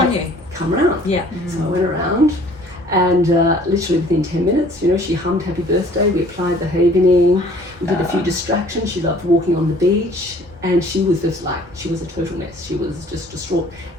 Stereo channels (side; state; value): both; normal; correlation 0.54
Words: you. Come around. Yeah. So I went around, and literally within 10 minutes, she hummed happy birthday, we applied the havening, we did a few distractions. She loved walking on the beach, and she was just like, she was a total mess. She was just distraught